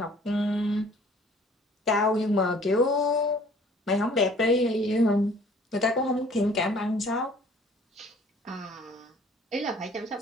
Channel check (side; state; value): both; normal; correlation 0.54